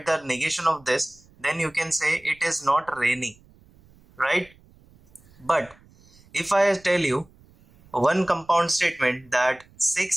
the negation of this, then you can say it is not raining, right? But if I tell you one compound statement that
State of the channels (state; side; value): noise; right; rumble, 28 dB below the sound